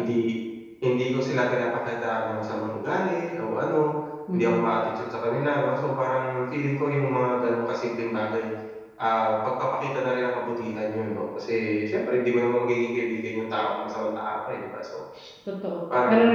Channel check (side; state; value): both; identical; correlation 1.00